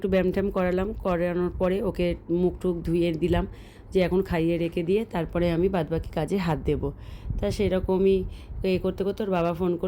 ব্যায়াম ট্যাম করানোর পরে ওকে মুখ টুক ধুয়ে দিলাম, যে এখন খাইয়ে রেখে দিয়ে তারপরে আমি বাদবাকি কাজে হাত দেবো। তা সেরকমই করতে করতে ওর বাবা ফোন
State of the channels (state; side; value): identical; both; correlation 1.00